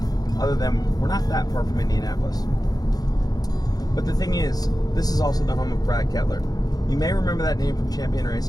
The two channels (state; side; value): late; right; 0.19 ms